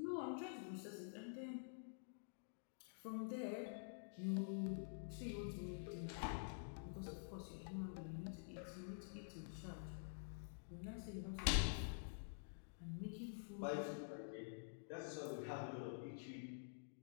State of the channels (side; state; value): right; silent; digital silence